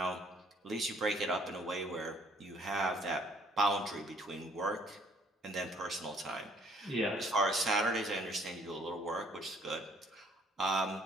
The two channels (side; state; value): both; normal; correlation 0.62